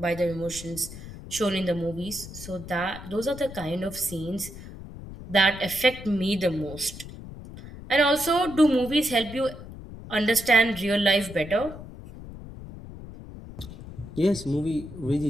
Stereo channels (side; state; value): left; noise; rumble, 13 dB below the sound